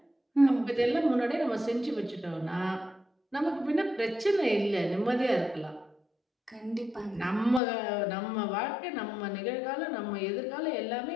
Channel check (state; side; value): drops out; right; at 7.6 s